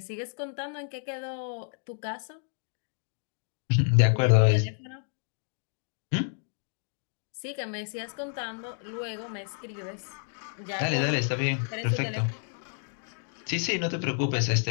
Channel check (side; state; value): right; silent; 58 dB below the other